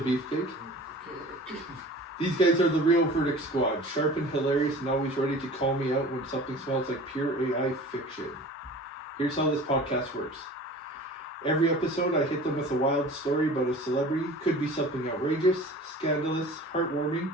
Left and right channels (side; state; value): both; normal; correlation 0.41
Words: Beefcake. These guys are the real Verdict Squad, sharp and hilarious and always ready to call me out when something smells like pure AI fiction. Here's how this podcast works. Every episode I hit them with a wild story about a celebrity. Could be something outrageous, scandalous, heartwarming,